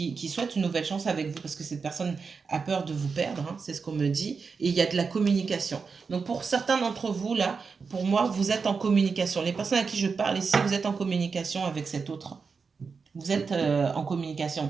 souhaite une nouvelle chance avec vous parce que cette personne a peur de vous perdre, hein, c'est ce qu'on me dit. Et il y a de la communication. Donc pour certains d'entre vous, là, pour moi, vous êtes en communication. Les personnes à qui je parle ici, vous êtes en communication avec cet autre. Vous êtes en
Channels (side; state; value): left; quieter; 5.1 dB